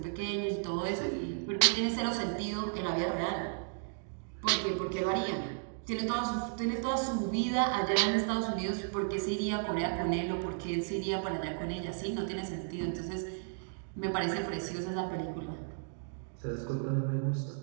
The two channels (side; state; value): left; silent; digital silence